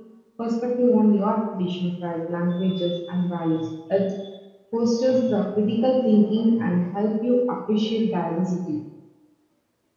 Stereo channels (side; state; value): both; identical; correlation 1.00